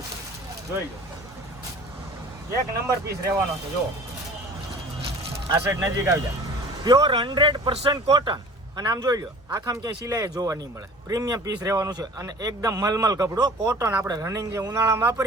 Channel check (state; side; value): normal; both; correlation 0.45